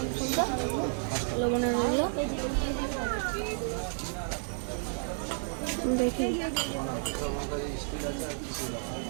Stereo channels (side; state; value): left; silent; 57 dB below the other